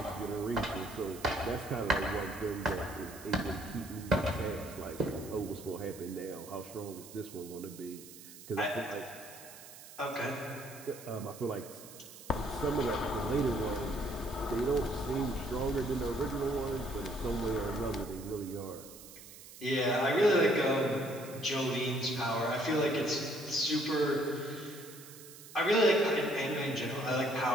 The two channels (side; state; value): right; noise; hiss, 17 dB below the sound